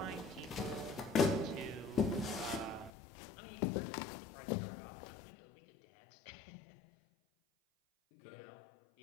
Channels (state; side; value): drops out; right; at 2.9 s